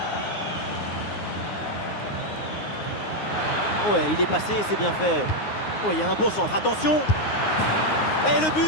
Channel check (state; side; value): late; right; 9.6 ms